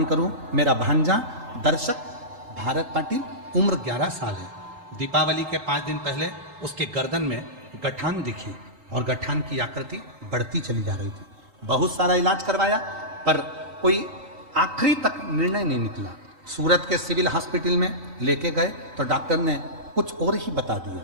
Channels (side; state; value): left; late; 3.9 ms